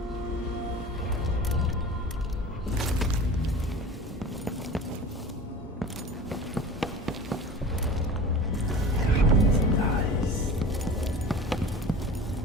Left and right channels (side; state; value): both; normal; correlation 0.37